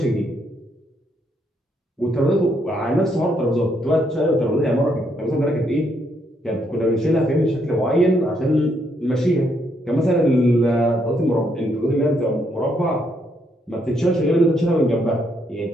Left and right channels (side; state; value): both; normal; correlation 0.74